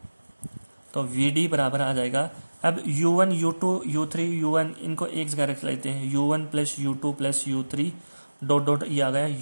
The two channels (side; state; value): both; inverted; correlation -1.00